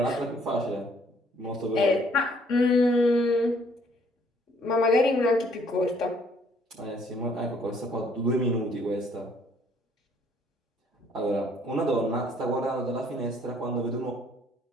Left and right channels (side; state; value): both; normal; correlation 0.63